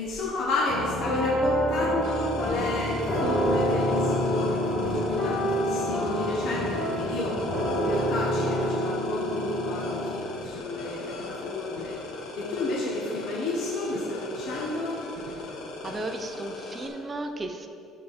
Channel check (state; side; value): normal; both; correlation 0.56